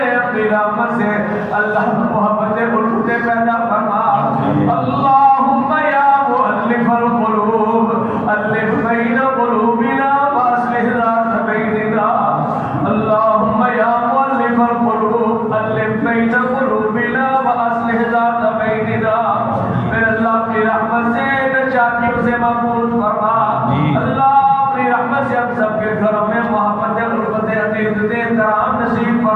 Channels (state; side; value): identical; both; correlation 1.00